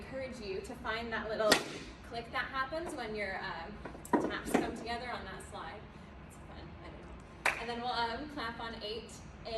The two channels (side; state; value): both; identical; correlation 1.00